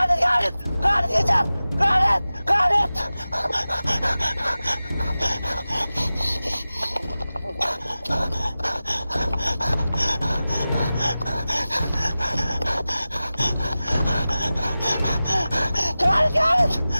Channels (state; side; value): inverted; both; correlation -0.96